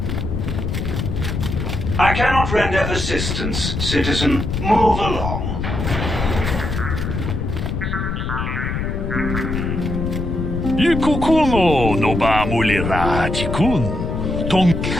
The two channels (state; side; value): noise; left; rumble, 3 dB below the sound